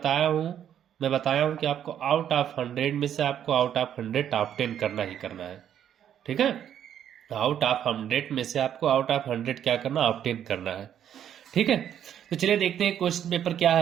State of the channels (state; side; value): quieter; left; 9.8 dB